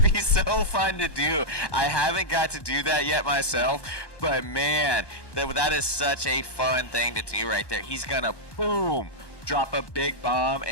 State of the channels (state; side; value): late; right; 1.2 ms